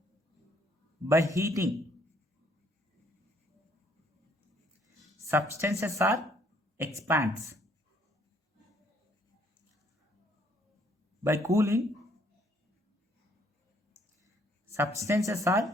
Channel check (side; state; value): both; normal; correlation 0.65